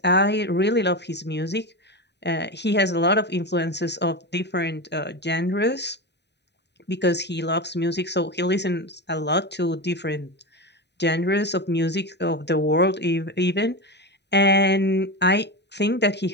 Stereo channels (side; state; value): right; late; 0.50 ms